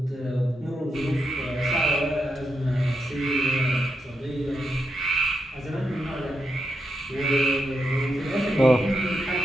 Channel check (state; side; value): normal; both; correlation 0.84